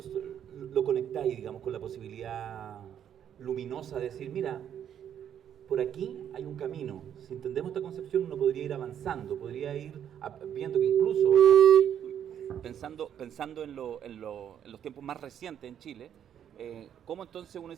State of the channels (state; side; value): quieter; left; 9.4 dB